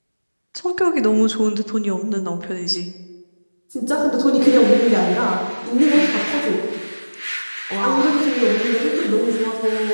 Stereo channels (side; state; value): both; inverted; correlation -1.00